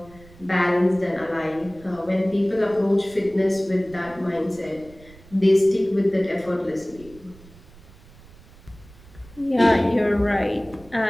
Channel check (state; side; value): noise; right; rumble, 23 dB below the sound